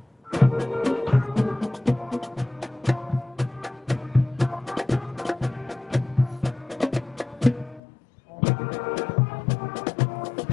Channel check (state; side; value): drops out; right; at 7.8 s